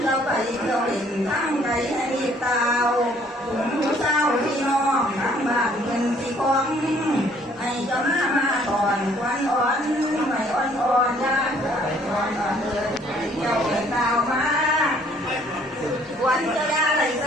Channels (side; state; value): both; normal; correlation 0.61